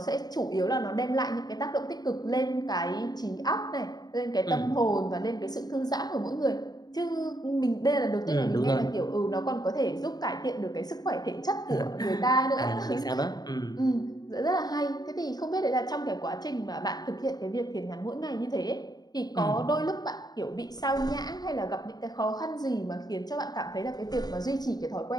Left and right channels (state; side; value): late; right; 0.19 ms